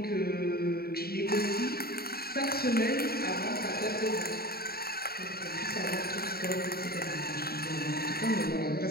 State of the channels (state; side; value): late; right; 0.45 ms